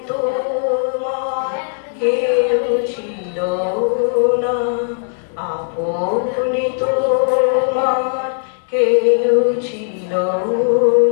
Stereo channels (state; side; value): silent; right; digital silence